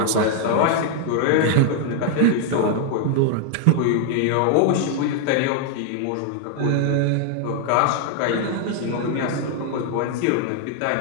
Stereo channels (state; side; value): different; both; correlation 0.00